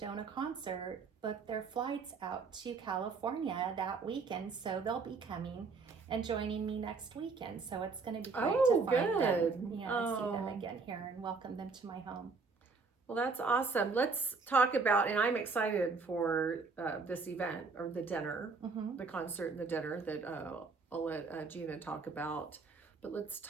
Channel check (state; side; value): quieter; left; 4.5 dB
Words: concert booked their flights out to California that weekend, so they'll be coming and joining me next weekend. So it's going to be great to find them, see them again here and welcome them to my home. Well, that's awesome. Let's talk about, and I'm excited for this event, or the dinner, the concert and the dinner that I'll let Gina talk about. But let's